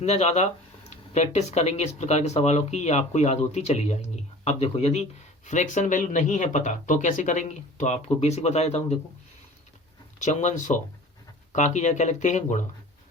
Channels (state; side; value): normal; both; correlation 0.43